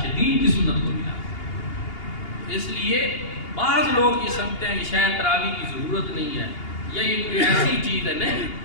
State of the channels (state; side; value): late; right; 2.8 ms